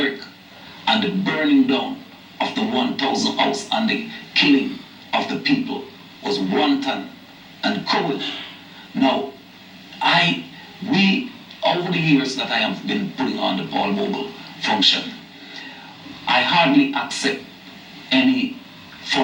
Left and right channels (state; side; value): identical; both; correlation 1.00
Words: and the burning down of the 1,000 house and the killing of the people was wanton and cruel. Now, over the years that I have been putting on the Paul Bogle function, I hardly accept any